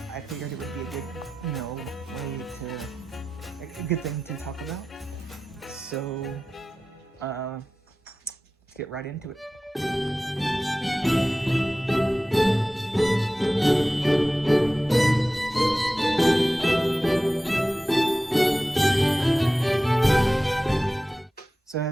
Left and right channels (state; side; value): normal; both; correlation 0.95